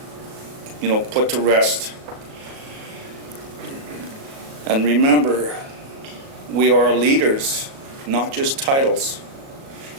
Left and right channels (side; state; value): left; late; 37 ms